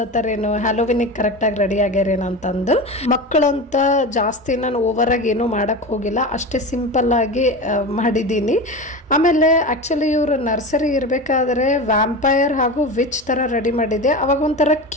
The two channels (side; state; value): both; normal; correlation 0.26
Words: ಹ್ಯಾಲೋವಿನಿಗೆ ಕರೆಕ್ಟಾಗಿ ರೆಡಿ ಆಗ್ಯಾರೇನು ಅಂತಂದು. ಮಕ್ಕಳಂತ ಜಾಸ್ತಿ ನಾನು ಓವರಾಗಿ ಏನೂ ಮಾಡೋಕ್ಕೆ ಹೋಗಿಲ್ಲ, ಅಷ್ಟೇ ಸಿಂಪಲ್ಲಾಗಿ ಮಾಡಿದ್ದೀನಿ. ಆಮೇಲೆ ಆ್ಯಕ್ಚುಲಿ ಇವರು ನರ್ಸರಿ ಇರಬೇಕಾದ್ರೆ ವ್ಯಾಂಪೈರ್ ಹಾಗೂ ವಿಚ್ ಥರ ರೆಡಿ ಮಾಡಿದ್ದೆ. ಅವಾಗ ಒಂಥರ